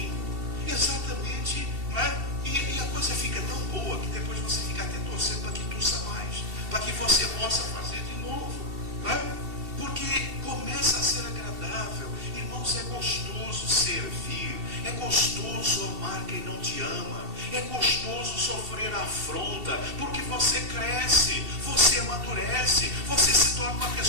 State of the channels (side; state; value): left; late; 2.7 ms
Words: Exatamente, não é? E a coisa fica tão boa que depois você fica até torcendo para que tussa mais, para que você possa fazer de novo, não é? Porque começa a ser agradável. Irmãos, é gostoso servir, é gostoso amar quem não te ama, é gostoso sofrer afronta, porque você cresce, você amadurece, você se torna uma